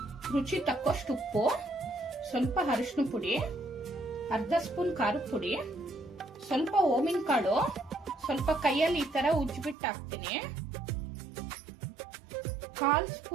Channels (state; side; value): drops out; left; at 9.8 s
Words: ರುಚಿ ತಕ್ಕಷ್ಟು ಉಪ್ಪು, ಸ್ವಲ್ಪ ಅರಿಶಿನ ಪುಡಿ, ಅರ್ಧ ಸ್ಪೂನ್ ಖಾರದ ಪುಡಿ, ಸ್ವಲ್ಪ ಓಮಿನ ಕಾಳು, ಸ್ವಲ್ಪ ಕೈಯಲ್ಲಿ ಈ ತರ ಉಜ್ಜಿಬಿಟ್ಟು ಹಾಕ್ತೀನಿ. 1/4